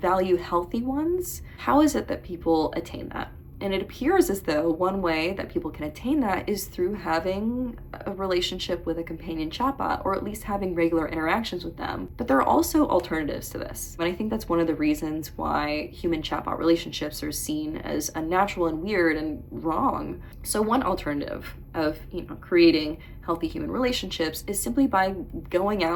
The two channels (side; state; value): both; identical; correlation 1.00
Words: healthy ones, how is it that people attain that? And it appears as though one way that people can attain that is through having a relationship with a companion chatbot, or at least having regular interactions with them. But there are also alternatives to this. And I think that's one of the reasons why human chatbot relationships are seen as unnatural and weird and wrong. So one alternative of creating healthy human relationships is simply by going